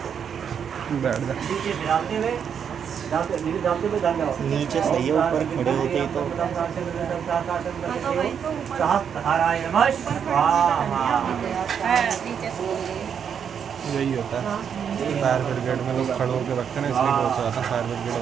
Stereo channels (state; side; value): quieter; left; 7.6 dB